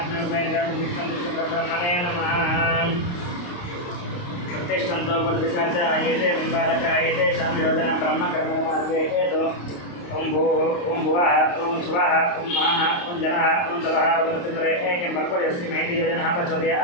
नमः नमः प्रतिष्ठन्तो बद्धिकाच आयते बिम्बालक आयते शान्तिरोधन ब्रह्म कर्म मार्गे हेतु ओम भूः ओम भुवः ओम स्वः ओम महः ओम जनः ओम तवः वृत्तिपरे एकें बल्पयस्ति महति योजनः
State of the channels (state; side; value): late; right; 29 ms